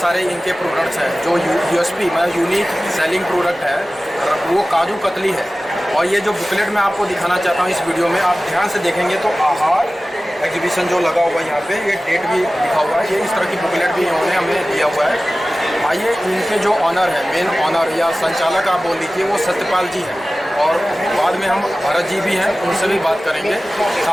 सारे इनके प्रोडक्ट्स हैं। जो यूएसपी मतलब यूनिक सेलिंग प्रोडक्ट है वो काजू कतली है। और ये जो बुकलेट मैं आपको दिखाना चाहता हूँ इस वीडियो में, आप ध्यान से देखेंगे तो आहार एग्जीबिशन जो लगा हुआ है यहाँ पे, ये डेट भी लिखा हुआ है। ये इस तरह की बुकलेट भी इन्होंने हमें दिया हुआ है। आइए, इनके जो ऑनर है, मेन ऑनर या संचालक आप बोल लीजिए, वो सत्यपाल जी हैं। और बाद में हम भरत जी भी हैं, उनसे भी बात करेंगे।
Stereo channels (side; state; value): both; normal; correlation 0.96